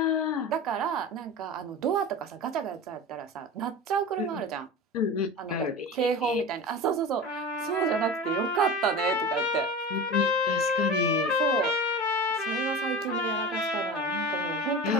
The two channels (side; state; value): both; normal; correlation 0.30